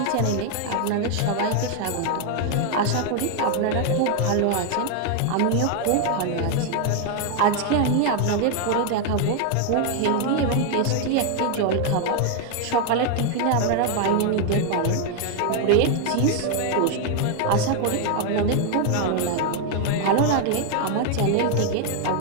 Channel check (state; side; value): different; both; correlation 0.01